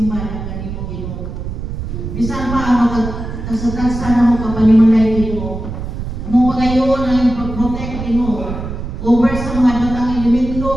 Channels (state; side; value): noise; right; rumble, 7 dB below the sound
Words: ng kanimo Ginoo. Bisan pa ang magtagsa na mo kapanimalay Ginoo. Mo pagayon ang pag-protect Ginoo over sa mga batang elemento